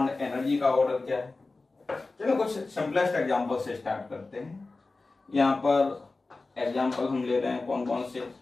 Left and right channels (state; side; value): quieter; right; 3.5 dB